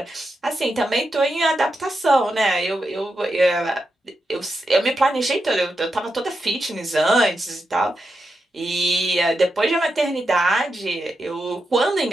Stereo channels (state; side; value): normal; both; correlation 0.87